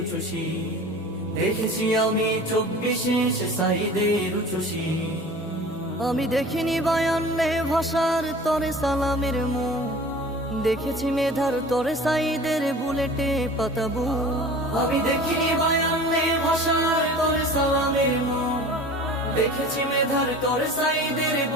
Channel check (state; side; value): normal; both; correlation 0.41